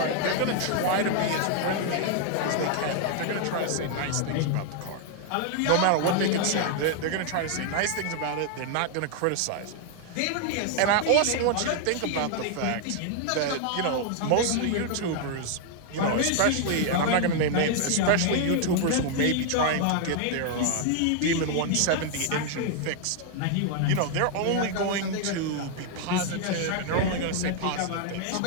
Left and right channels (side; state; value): both; different; correlation 0.00